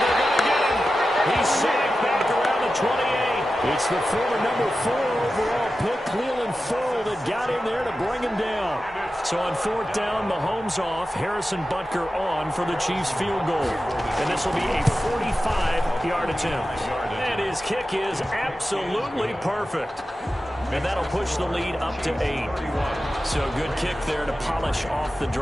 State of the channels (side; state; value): both; normal; correlation 0.93